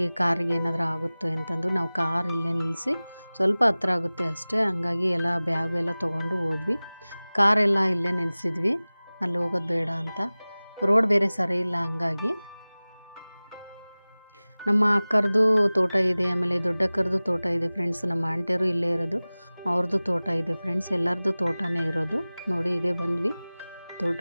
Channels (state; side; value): inverted; both; correlation -0.99